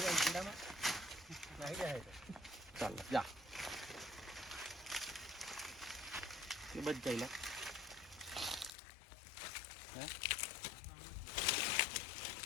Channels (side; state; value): right; drops out; at 8.7 s